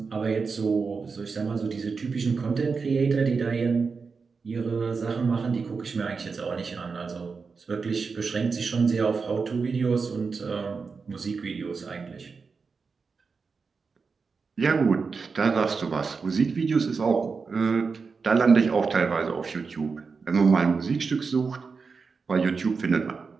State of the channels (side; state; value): left; quieter; 4.9 dB